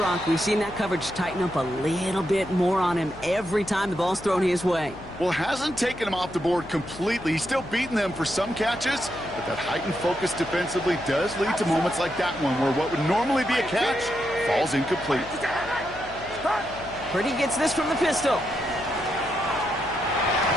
We've seen that coverage tighten up a little bit more on him every time the ball's thrown his way. Well, hasn't taken him off the board completely. He's still beating them for some catches, but that heightened focus defensively does lead to moments like that one where what would normally be a catch falls incomplete. Purdy gets this from the pistol.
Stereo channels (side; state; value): left; noise; hum, 17 dB below the sound